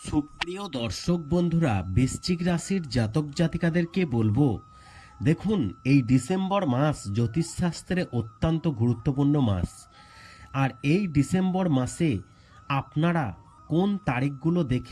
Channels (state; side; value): identical; both; correlation 1.00